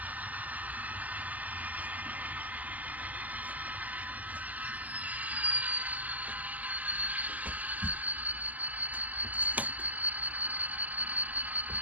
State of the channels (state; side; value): late; left; 0.078 ms